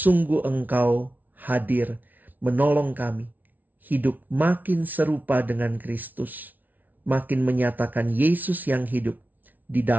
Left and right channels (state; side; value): late; left; 0.080 ms